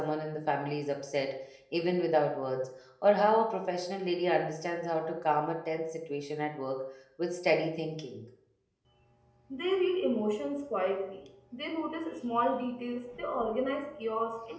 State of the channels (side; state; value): both; identical; correlation 1.00